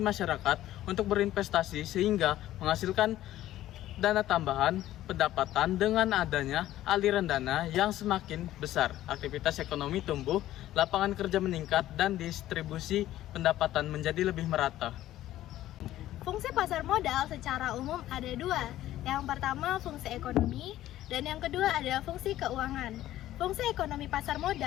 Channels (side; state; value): right; quieter; 14.0 dB